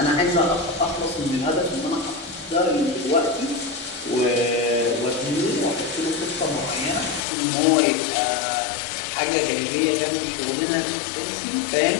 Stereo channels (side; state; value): right; drops out; at 7.2 s